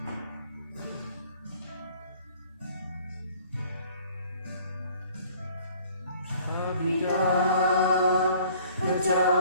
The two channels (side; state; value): both; inverted; correlation -0.54